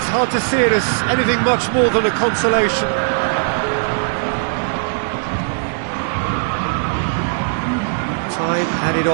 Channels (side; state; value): left; silent; digital silence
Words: hard to see it as anything much more than a consolation. Time added